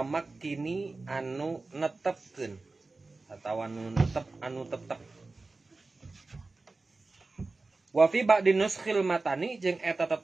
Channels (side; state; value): left; quieter; 3.6 dB